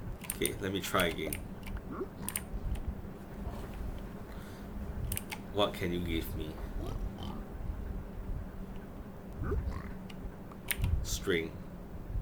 Okay, let me try again. What can you give me? String.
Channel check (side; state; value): both; identical; correlation 1.00